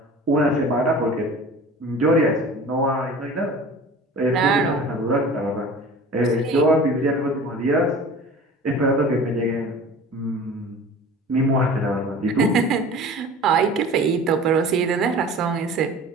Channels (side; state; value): both; normal; correlation 0.41